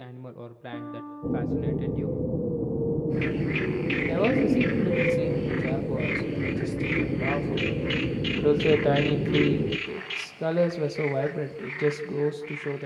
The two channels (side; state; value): both; identical; correlation 1.00